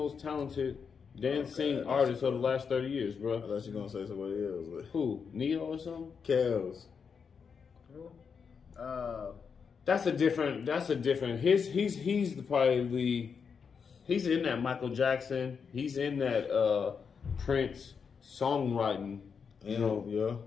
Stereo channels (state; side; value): quieter; right; 6.1 dB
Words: talented dancing artists of the last 30 years, I bro. thought you were gonna say somebody else. Who? Neo or something? Kels. That's a different. He's in that Michael Jackson. He's in that Prince songwriting. You know,